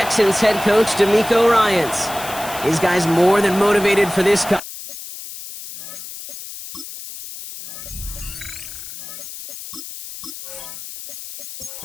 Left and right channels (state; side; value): noise; left; hiss, 12 dB below the sound